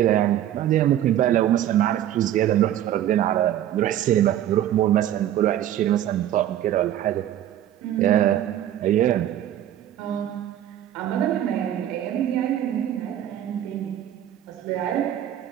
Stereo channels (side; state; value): left; quieter; 11.7 dB